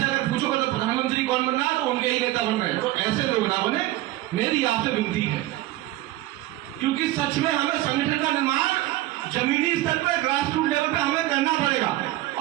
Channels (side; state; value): left; quieter; 16.4 dB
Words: अगर पूछोगे तो प्रधानमंत्री कौन बन रहा है तो उनके ही नेता बन रहे हैं। तो ऐसे लोग ना बने, मेरी आपसे विनती है। क्योंकि सच में हमें संगठन का निर्माण जमीनी स्तर पर, ग्रास रूट लेवल पे हमें करना पड़ेगा,